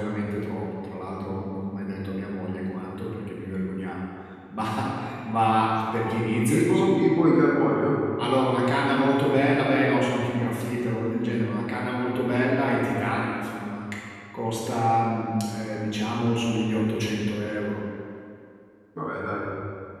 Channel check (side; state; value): both; identical; correlation 1.00